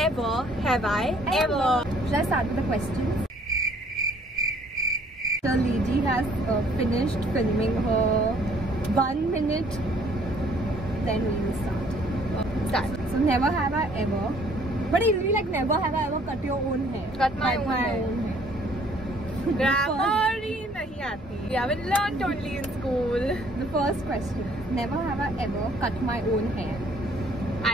Have I Ever. Should I start with the questions? The lady has finished filming her 1 minute. Then we will start. So never have I ever. But it will be like never have I ever cut your own hair. Cut my own hair. Grammar nahi aati. We haven't learnt only in school. The first question. Never have I ever cut my own hair.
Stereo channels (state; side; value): normal; both; correlation 0.60